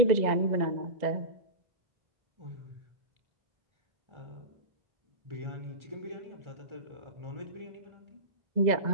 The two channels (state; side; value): late; left; 2.0 ms